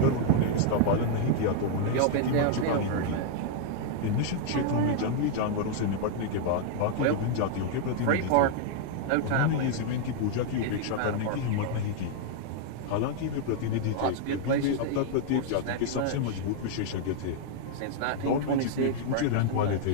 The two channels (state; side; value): different; both; correlation -0.01